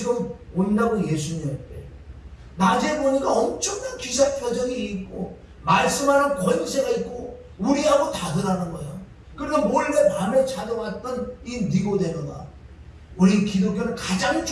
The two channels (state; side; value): identical; both; correlation 1.00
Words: 온다고 예수님한테 낮에 보니까 엄청난 기사 표정이 있고 말씀하는 권세가 있고 우리하고 다르다는 거예요. 그러니까 몰래 밤에 찾아왔던 이 니고데모가 우리 기독교는 가장